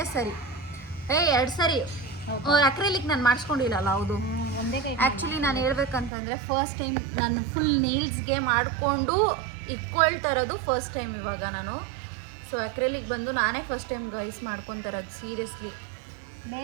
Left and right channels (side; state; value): left; drops out; at 6.1 s